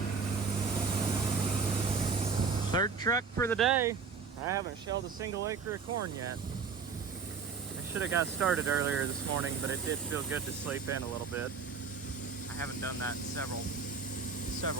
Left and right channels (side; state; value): left; quieter; 5.5 dB